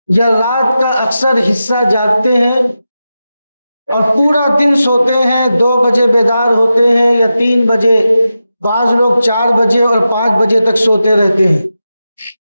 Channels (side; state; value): both; inverted; correlation -0.90